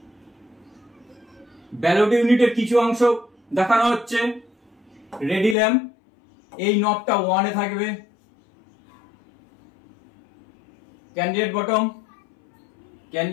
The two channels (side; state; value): right; drops out; at 5.6 s